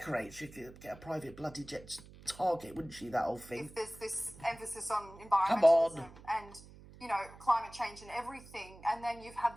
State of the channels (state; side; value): noise; right; hum, 19 dB below the sound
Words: She could get a private bloody jet target, wouldn't she, that whole thing? If there's this emphasis on Come on. environmentalism and, you know, climate change and everything, and then you've had